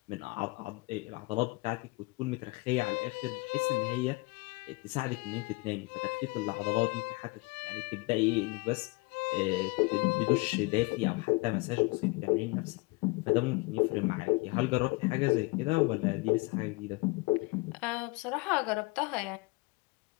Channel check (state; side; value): quieter; right; 25.3 dB